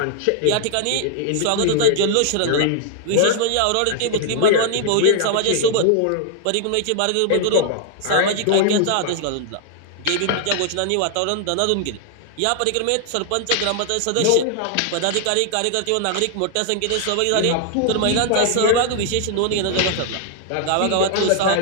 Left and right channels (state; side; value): different; both; correlation 0.00